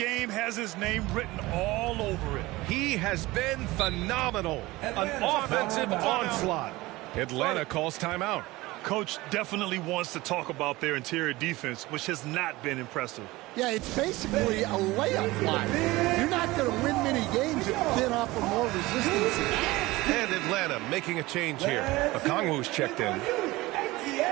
has his name written all over it. He has been phenomenal. An offensive onslaught. Atlanta calls timeout. Coach definitely wants to talk about their interior defense, which has not been impressive. Yeah, it's basically a layup line. You're not going to win many games if you then offer more resistance. And Atlanta making a change here. Okongwu's checked in.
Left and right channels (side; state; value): left; quieter; 19.9 dB